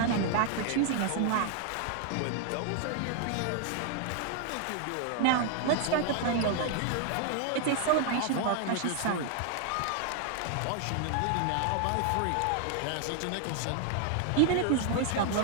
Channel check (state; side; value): different; both; correlation 0.00